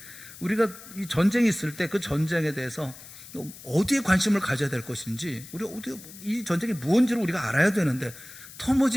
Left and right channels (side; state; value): left; noise; hiss, 17 dB below the sound